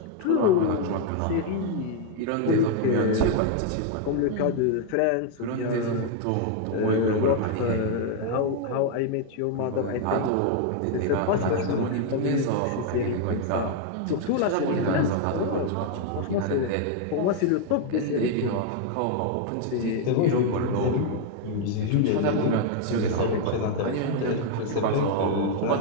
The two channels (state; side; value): different; both; correlation 0.00